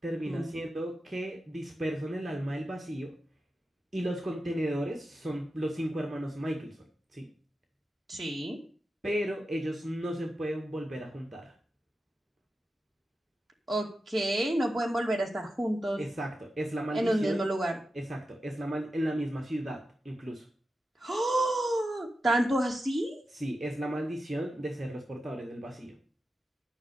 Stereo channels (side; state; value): both; normal; correlation 0.91